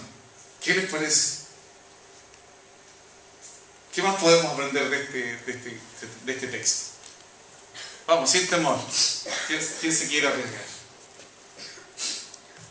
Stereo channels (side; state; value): both; identical; correlation 1.00